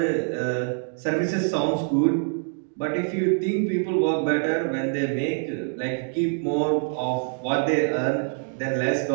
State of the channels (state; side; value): silent; left; 62 dB below the other